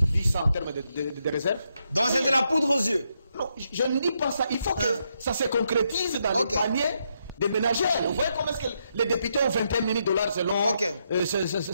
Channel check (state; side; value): inverted; both; correlation -0.79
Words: dit ça en termes de réserve. Donc c'est de la poudre aux yeux? Non, je ne dis pas ça. Il faut que ça se concrétise dans le panier des ménagères. Vous voyez comment est-ce que les députés ont 21 000 $